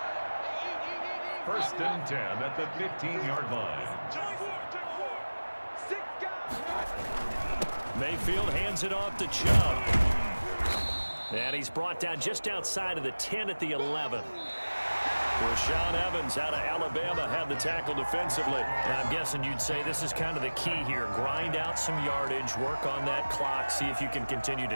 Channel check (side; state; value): both; inverted; correlation -1.00